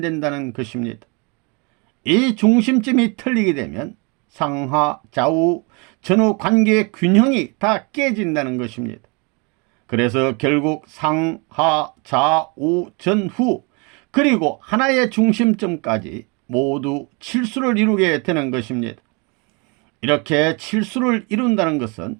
것입니다. 이 중심점이 틀리게 되면 상하, 좌우, 전후 관계의 균형이 다 깨진다는 것입니다. 그래서 결국 상하, 좌우, 전후 그리고 하나의 중심점까지 모두 칠수를 이루게 되는 것입니다. 이렇게 칠수를 이룬다는 것은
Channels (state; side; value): quieter; left; 31.2 dB